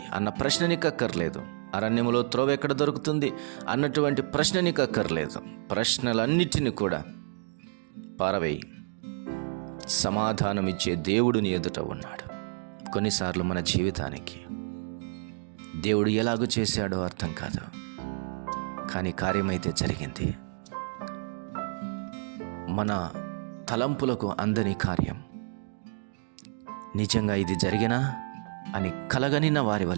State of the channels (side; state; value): left; silent; 58 dB below the other